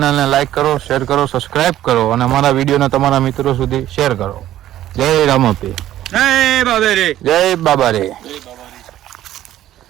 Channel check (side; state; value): left; quieter; 13.1 dB